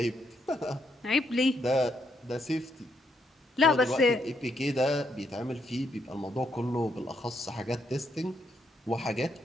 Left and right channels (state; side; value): normal; both; correlation 0.76